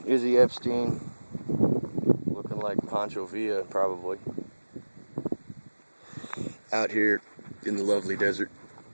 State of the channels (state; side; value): inverted; both; correlation -1.00